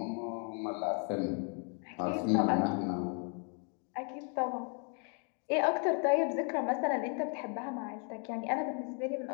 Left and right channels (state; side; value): quieter; right; 39.2 dB